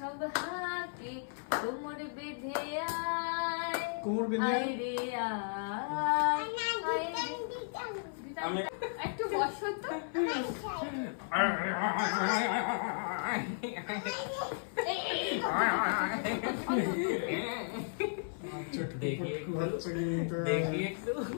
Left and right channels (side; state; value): right; silent; 55 dB below the other